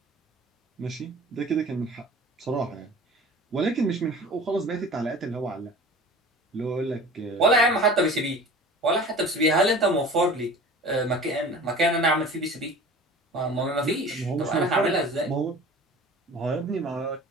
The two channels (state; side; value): normal; both; correlation 0.40